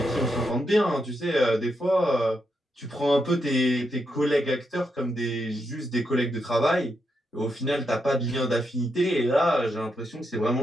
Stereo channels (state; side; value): normal; both; correlation 0.82